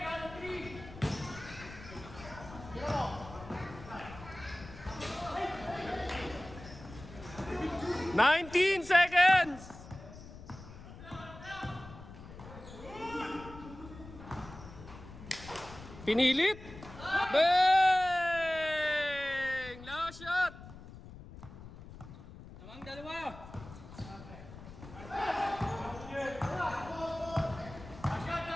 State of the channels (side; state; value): left; noise; rumble, 15 dB below the sound